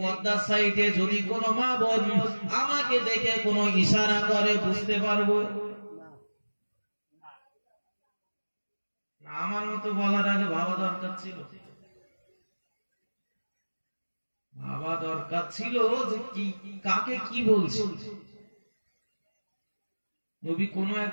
সাইডে যদি কোনো মা বোন আমাকে দেখে কোনো ইশারা করে বুঝতে পারবো? আমার মতো বলার আগে ভাবা দরকার ছিল, ভাবা দরকার ছিল যে কি কাকে কি বলছে। নবী কোন এক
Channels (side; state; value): both; inverted; correlation -1.00